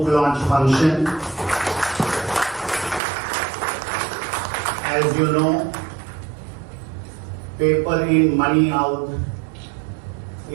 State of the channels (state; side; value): drops out; left; at 3.0 s